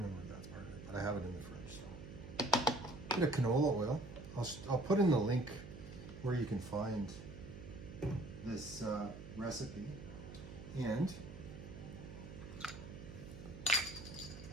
if that's part of it, but I have it in the fridge. So. Bit of canola oil. I'll put in the link where you can find this recipe. And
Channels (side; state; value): right; noise; hum, 12 dB below the sound